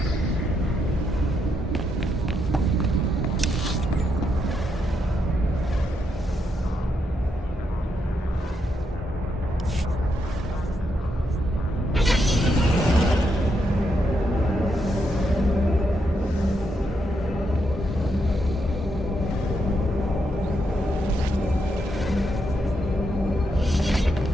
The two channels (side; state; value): both; normal; correlation 0.80